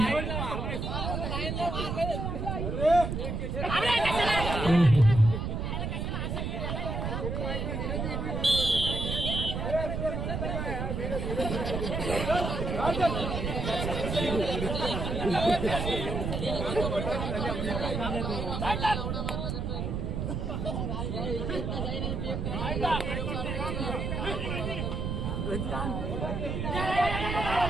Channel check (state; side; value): noise; right; rumble, 2 dB below the sound